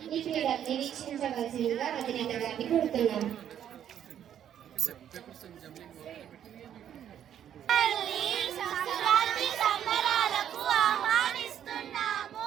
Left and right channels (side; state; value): left; quieter; 9.9 dB